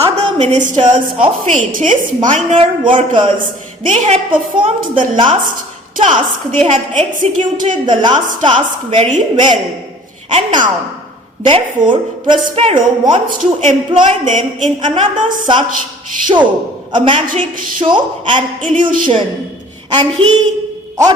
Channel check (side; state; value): both; normal; correlation 0.50